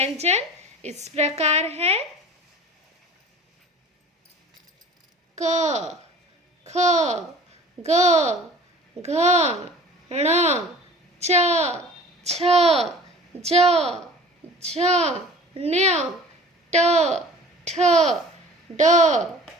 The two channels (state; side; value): normal; both; correlation 0.45